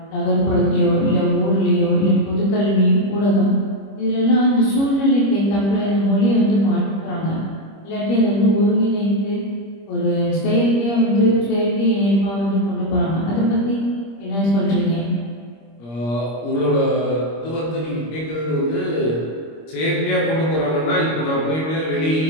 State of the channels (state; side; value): late; right; 25 ms